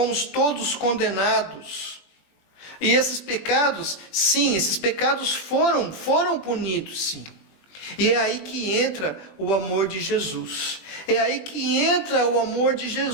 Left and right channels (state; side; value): late; right; 20 ms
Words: todos condenados. E esses pecados, sim, esses pecados foram punidos, sim. E é aí que entra o amor de Jesus. É aí que entra o amor de